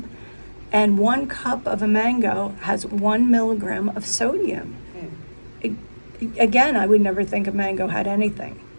and 1 cup of a mango has 1 milligram of sodium. Again, I would never think a mango had anything.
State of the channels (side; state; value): both; inverted; correlation -1.00